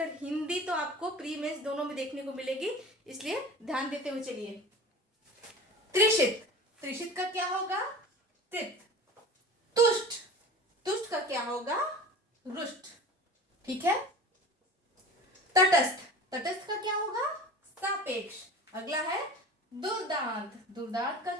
हिंदी तो आपको प्री मेंस दोनों में देखने को मिलेगी, इसलिए ध्यान देते हुए चलिए। त्रिशित, त्रिशित का क्या होगा? तृप्त। तुष्ट, तुष्ट का क्या होगा? रुष्ट। ठीक है। तटस्थ, तटस्थ का क्या होगा? सापेक्ष। अगला है दुर्दांत, दुर्दांत का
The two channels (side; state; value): both; normal; correlation 0.37